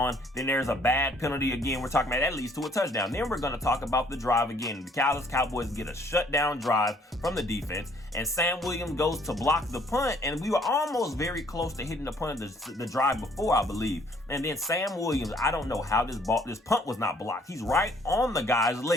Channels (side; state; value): both; normal; correlation 0.62